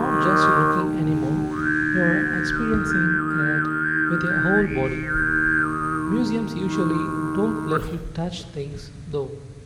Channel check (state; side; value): identical; both; correlation 1.00